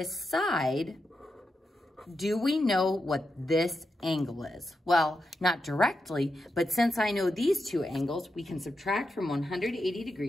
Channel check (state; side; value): normal; both; correlation 0.87